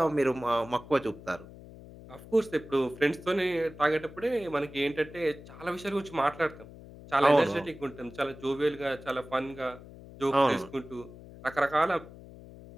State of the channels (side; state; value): left; noise; hum, 17 dB below the sound